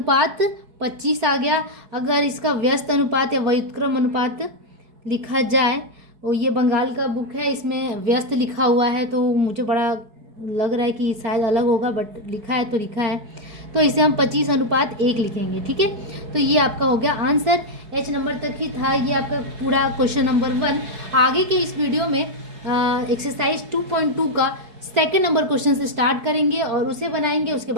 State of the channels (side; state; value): left; late; 4.7 ms